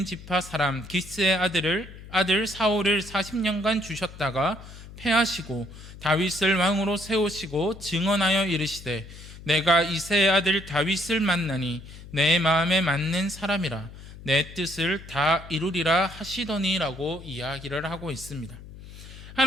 지파 사람 기스의 아들 사울을 40년간 주셨다가 패하시고 다윗을 왕으로 세우시고 증언하여 이르시되 내가 이새의 아들 다윗을 만나니 내 마음에 맞는 사람이라 내 뜻을 다 이루리라 하시더니라고 이야기를 하고 있습니다.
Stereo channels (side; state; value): left; noise; hum, 16 dB below the sound